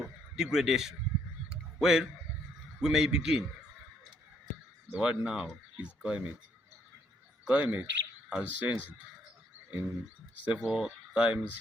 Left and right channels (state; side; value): normal; both; correlation 0.69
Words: degradation. Well, we may begin. The word now is climate. Climate has changed in several times,